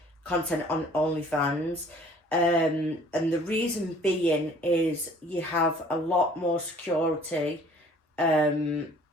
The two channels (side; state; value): both; normal; correlation 0.54